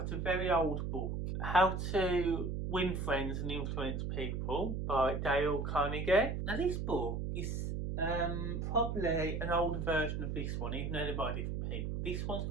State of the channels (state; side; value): noise; right; hum, 2 dB below the sound